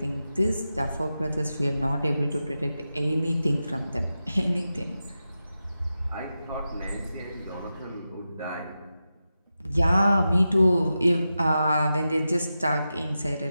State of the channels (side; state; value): both; inverted; correlation -0.91